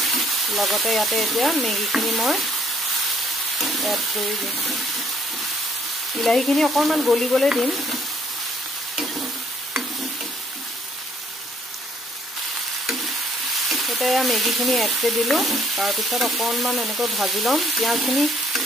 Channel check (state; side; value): normal; both; correlation 0.64